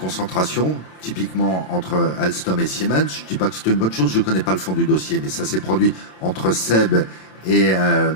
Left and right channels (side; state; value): right; late; 27 ms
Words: typiquement entre Alstom et Siemens. Je ne dis pas que c'est une bonne chose, je ne connais pas le fond du dossier, mais ça s'est produit entre SEB